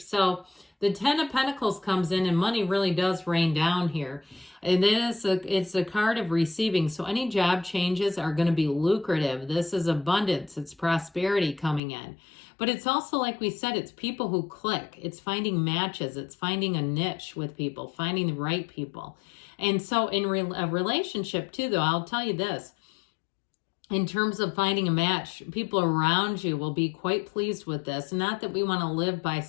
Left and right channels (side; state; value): right; drops out; at 11.8 s